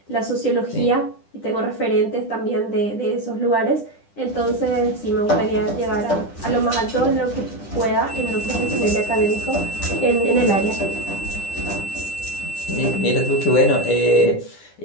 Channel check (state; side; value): late; right; 10 ms